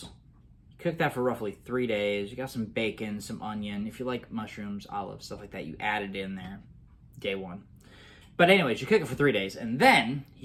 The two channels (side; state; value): both; identical; correlation 1.00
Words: You cook that for roughly 3 days. You got some bacon, some onion. If you like mushrooms, olives, stuff like that, you add it in there day one. But anyways, you cook it for 3 days, and then